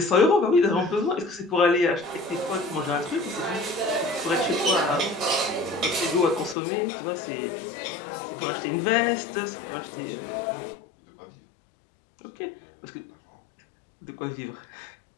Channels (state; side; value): drops out; right; at 6.6 s